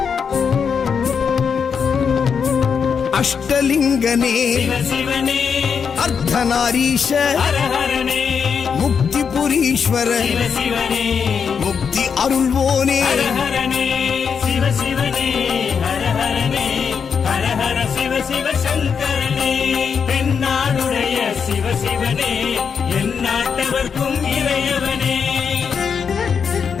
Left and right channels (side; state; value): right; quieter; 6.5 dB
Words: அஷ்டலிங்கனே சிவசிவனே அர்த்தநாரீஷ ஹரஹரனே முக்திபுரீஸ்வர சிவசிவனே முக்தி அருள்வோனே ஹரஹரனே சிவசிவனே ஹரஹரனே ஹரஹர சிவ சிவ சங்கரனே தென்னாடுடைய சிவசிவனே என் நாட்டவர்க்கும் இறையவனே